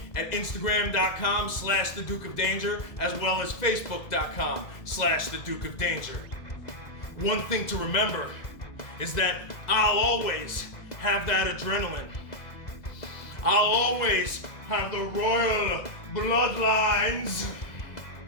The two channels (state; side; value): late; right; 1.9 ms